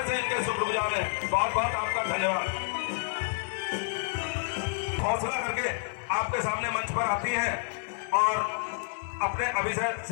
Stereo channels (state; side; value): silent; right; 58 dB below the other